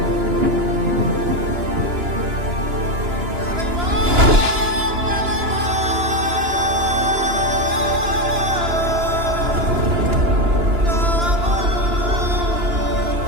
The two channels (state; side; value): late; left; 2.9 ms